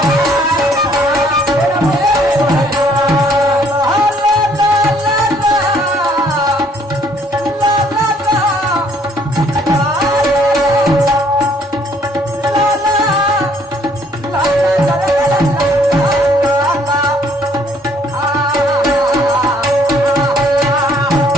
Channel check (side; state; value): both; normal; correlation 0.63